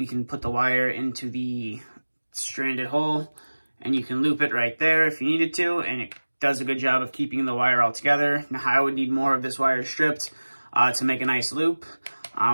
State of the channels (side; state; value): both; inverted; correlation -1.00